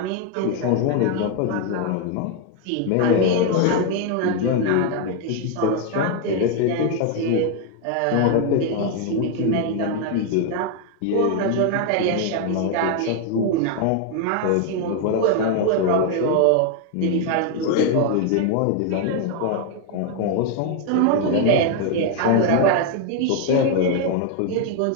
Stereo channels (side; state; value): both; different; correlation 0.01